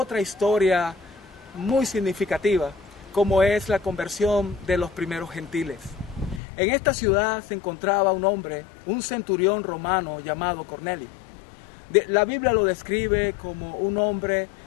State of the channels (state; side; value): drops out; right; at 6.4 s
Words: historia muy significativa, como es la conversión de los primeros gentiles. En esta ciudad se encontraba un hombre, un centurión romano llamado Cornelio. La Biblia lo describe como un hombre